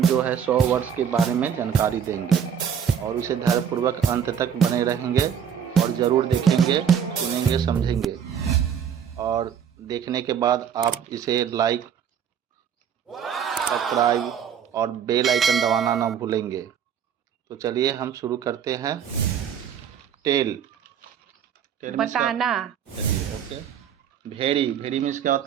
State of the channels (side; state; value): left; quieter; 8.2 dB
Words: जो है 100 वर्ड्स के बारे में जानकारी देंगे और इसे ध्यानपूर्वक अंत तक बने रहेंगे और ज़रूर देखेंगे, सुनेंगे, समझेंगे और देखने के बाद आप इसे लाइक, सब्सक्राइब और बेल आइकन दबाना ना भूलेंगे। तो चलिए हम शुरू करते हैं। टेल टेल मीन्स बताना। चलिए ओके। भेड़ी भेड़ी मीन्स क्या